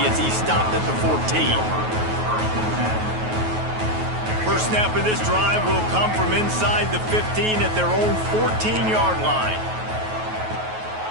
as he stopped at the 14. First snap of this drive will come from inside the 15 at their own 14-yard line.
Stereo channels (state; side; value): late; left; 9.3 ms